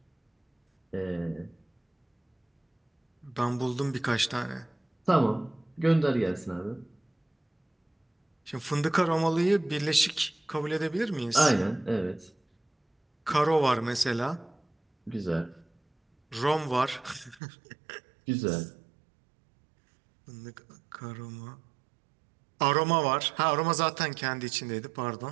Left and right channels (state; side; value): drops out; left; at 17.4 s